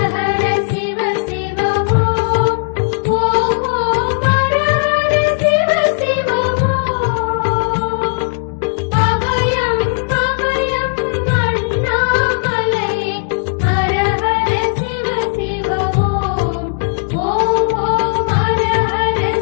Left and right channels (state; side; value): silent; right; digital silence